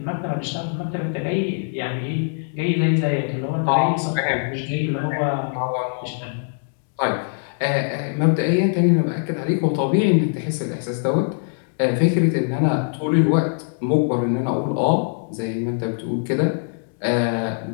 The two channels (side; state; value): right; silent; digital silence